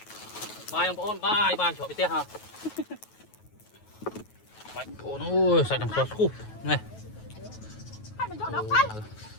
Bài ông ôn bài chỗ bị tét hả? Bài ôn ôi sạch đằng sọt khu này.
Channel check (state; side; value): late; right; 9.3 ms